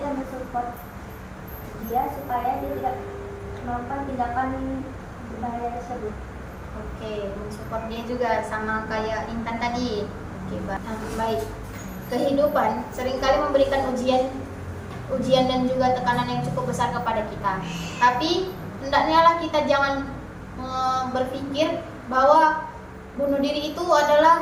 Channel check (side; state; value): both; identical; correlation 1.00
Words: dan mensupport dia supaya dia tidak melakukan tindakan berbahaya tersebut. Oke, mensupport dia juga sama kayak Intan tadi. Oke, baik. Kehidupan seringkali memberikan ujian dan juga tekanan yang cukup besar kepada kita. Tapi hendaknya lah kita jangan berpikir bahwa bunuh diri itu adalah